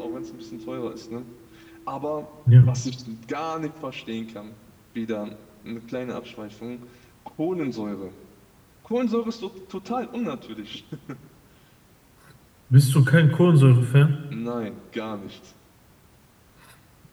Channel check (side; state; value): both; identical; correlation 1.00